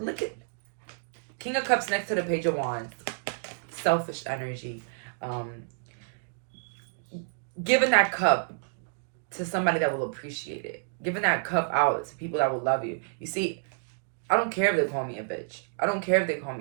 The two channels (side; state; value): left; silent; digital silence